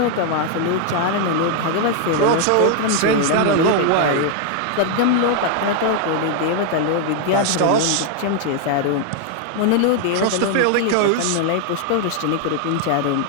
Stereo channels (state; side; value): different; both; correlation 0.00